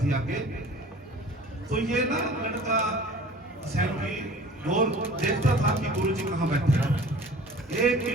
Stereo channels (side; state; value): both; normal; correlation 0.45